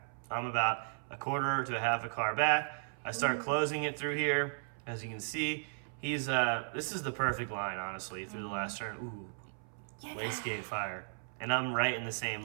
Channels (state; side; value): silent; left; 54 dB below the other